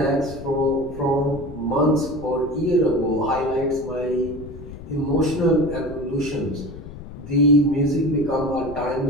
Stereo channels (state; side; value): noise; left; rumble, 13 dB below the sound